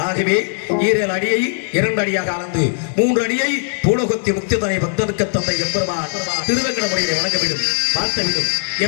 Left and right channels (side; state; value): right; silent; 64 dB below the other